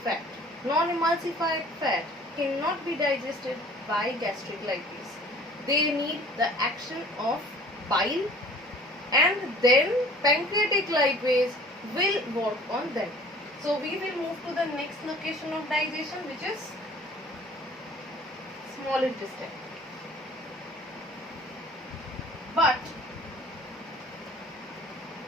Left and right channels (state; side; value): normal; both; correlation 0.50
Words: fat. Non-emulsified fat cannot be digested by gastric lipase. They need the action of bile, and then pancreatic lipase will work on them. So we will move to the next location of digestion, which is small intestine. But